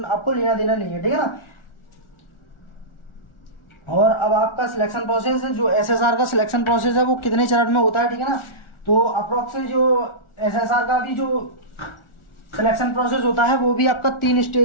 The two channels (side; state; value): right; late; 1.4 ms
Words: लेना देना नहीं है, ठीक है ना। और अब आपका सिलेक्शन प्रोसेस है, जो एसएसआर का सिलेक्शन प्रोसेस है वो कितने चरण में होता है, ठीक है ना। तो अप्रोक्स जो एसएसआर का भी जो सिलेक्शन प्रोसेस होता है वो भी आपका 3